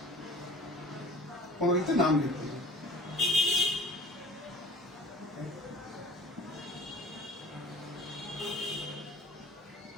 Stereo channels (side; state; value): both; normal; correlation 0.43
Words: প্রণালীতে নাম লিখতে হবে।